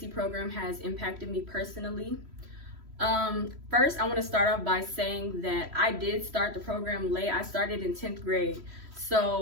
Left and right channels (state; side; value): late; left; 3.1 ms